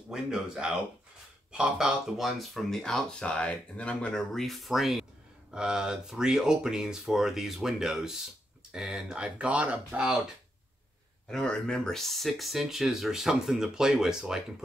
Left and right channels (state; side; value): normal; both; correlation 0.82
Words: out, pop out the ones from the outside, and then I'm going to reframe 3 openings for these windows. And I've got about, I don't remember, 6 inches or something to play with, so I can